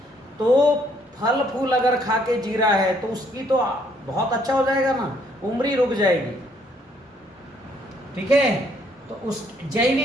तो फल फूल अगर खा के जी रहा है तो उसकी तो बहुत अच्छा हो जाएगा ना, उम्र ही रुक जाएगी। ठीक है। तो उस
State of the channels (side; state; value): both; normal; correlation 0.67